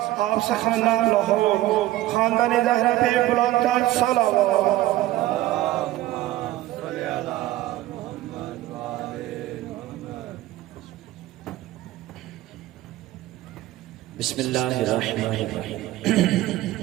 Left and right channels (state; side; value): quieter; left; 15.6 dB